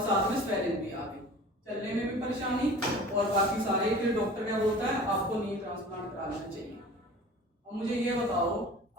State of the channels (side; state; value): both; normal; correlation 0.42